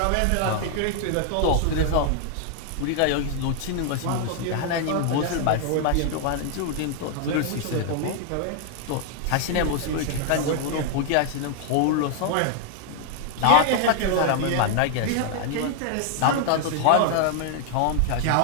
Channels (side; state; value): both; different; correlation 0.00